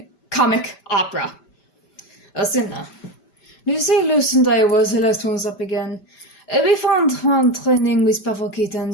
comic opera. Athena. Lepus and I was the last ones up again. We found one training with Powatina and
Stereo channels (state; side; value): late; right; 5.1 ms